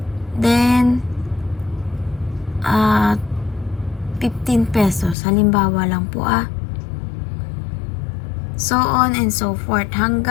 Then 15 pesos halimbawa lang po so on and so forth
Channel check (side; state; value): right; drops out; at 5.2 s